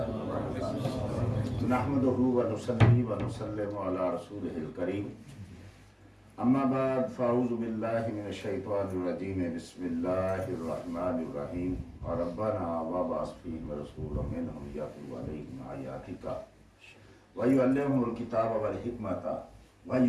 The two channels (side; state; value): both; identical; correlation 1.00